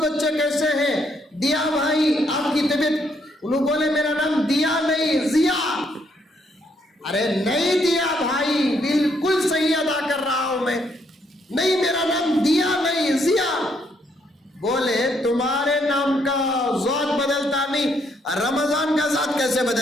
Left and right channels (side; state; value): both; normal; correlation 0.72